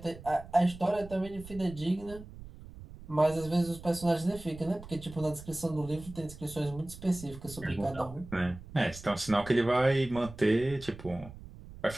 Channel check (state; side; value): noise; right; rumble, 16 dB below the sound